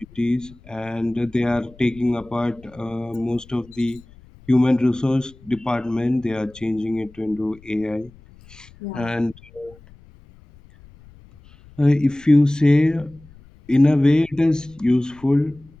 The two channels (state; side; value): noise; left; rumble, 24 dB below the sound